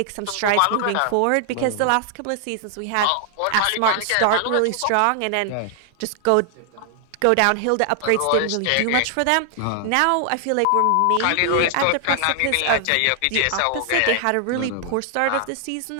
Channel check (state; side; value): different; both; correlation 0.00